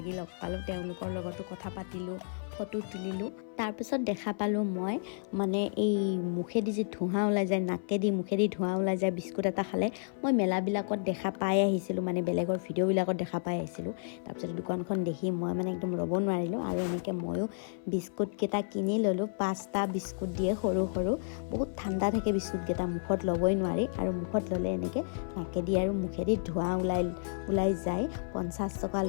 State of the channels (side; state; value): right; silent; 57 dB below the other